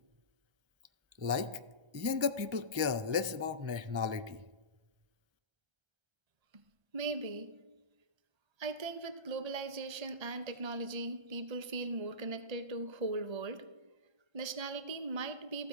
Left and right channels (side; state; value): left; late; 1.3 ms